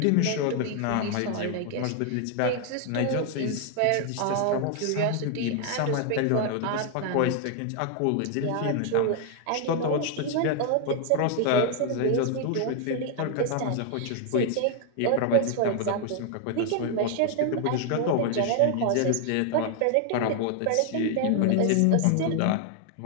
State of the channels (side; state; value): both; different; correlation 0.00